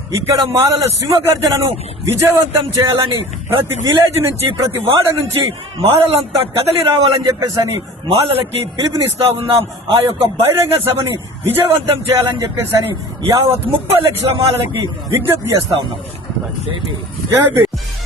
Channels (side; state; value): both; normal; correlation 0.41